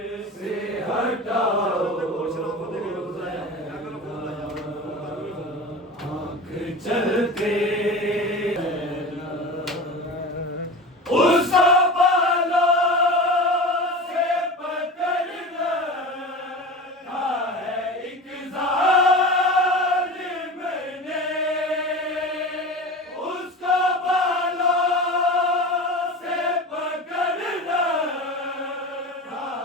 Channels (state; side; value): normal; both; correlation 0.31